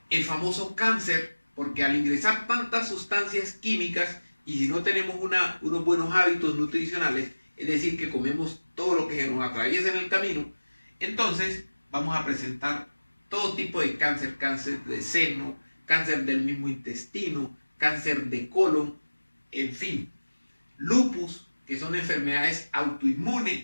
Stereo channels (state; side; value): inverted; both; correlation -1.00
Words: famoso cáncer, porque al ingresar tantas sustancias químicas y si no tenemos unos buenos hábitos nutricionales, es decir, que comemos todo lo que se nos atraviesa en el camino, entonces vamos a presentar todo tipo de cáncer, cáncer de seno, cáncer del mismo intestino, cáncer de colon, en fin, lupus, que son enfermedades autoinmunes,